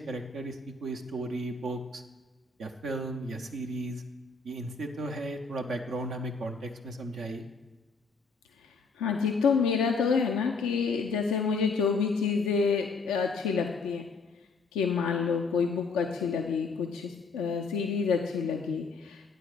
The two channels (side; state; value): right; quieter; 4.4 dB